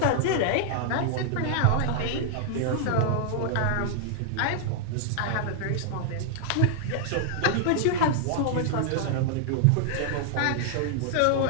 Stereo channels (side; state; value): both; different; correlation -0.01